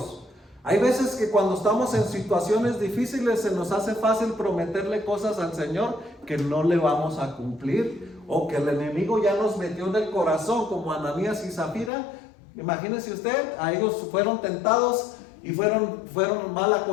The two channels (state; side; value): drops out; right; at 11.9 s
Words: Hay veces que cuando estamos en situaciones difíciles se nos hace fácil prometerle cosas al Señor que no le vamos a cumplir, o que el enemigo ya nos metió en el corazón, como Ananías y Zafira. Imagínese usted, a ellos fueron tentados y fueron mal